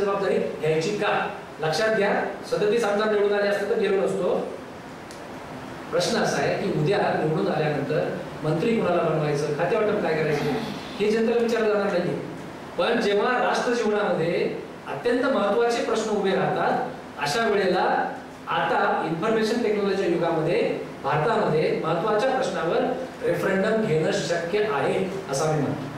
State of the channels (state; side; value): identical; both; correlation 1.00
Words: जबाबदारी घ्यायची का? लक्षात घ्या, 37 आमदार निवडून आले असते तर गेलो नसतो. प्रश्न असा आहे की उद्या निवडून आल्यानंतर मंत्री कोणाला बनवायचं, खाते वाटप काय करायचं, हे जनतेला विचारलं जाणार नाही. पण जेव्हा राष्ट्र जीवनामध्ये अत्यंत महत्त्वाचे प्रश्न उभे राहतात, अशा वेळेला आता इन्फॉर्मेशन टेक्नॉलॉजीच्या युगामध्ये भारतामध्ये महत्त्वाच्या प्रश्नावर रेफरंडम घेणं शक्य आहे असं मी म्हणतो.